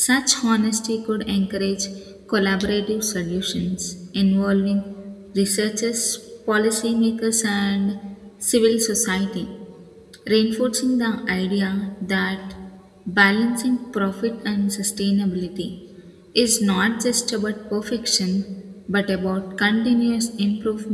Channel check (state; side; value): identical; both; correlation 1.00